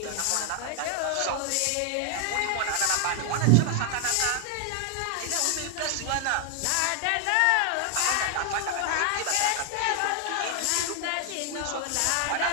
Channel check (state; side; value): different; both; correlation 0.00